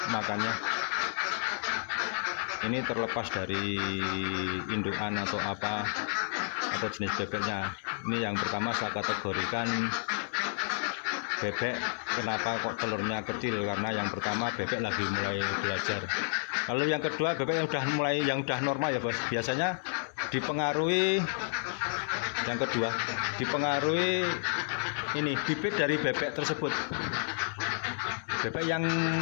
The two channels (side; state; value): right; silent; digital silence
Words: makannya. Ini terlepas dari indukan atau apa, atau jenis bebeknya. Ini yang pertama saya kategorikan bebek kenapa kok telurnya kecil, karena yang pertama bebek lagi mulai belajar. Kalau yang kedua bebek yang udah normal ya bos, biasanya dipengaruhi ini bibit dari bebek tersebut. Bebek yang